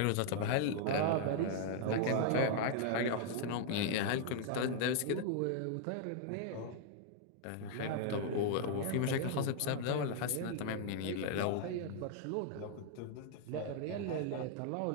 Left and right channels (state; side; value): different; both; correlation 0.00